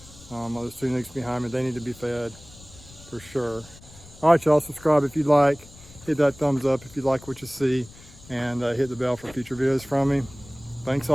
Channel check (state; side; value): noise; left; rumble, 21 dB below the sound